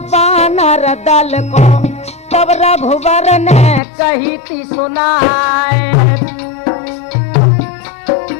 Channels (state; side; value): drops out; right; at 3.8 s